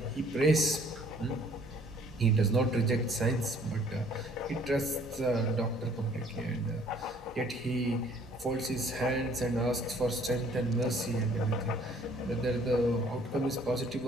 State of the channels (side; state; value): both; normal; correlation 0.59